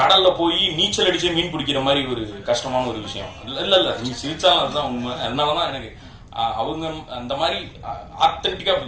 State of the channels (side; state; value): both; identical; correlation 1.00